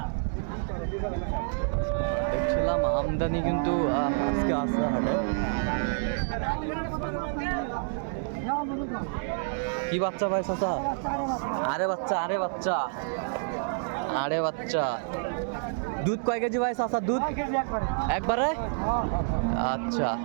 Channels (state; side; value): silent; left; digital silence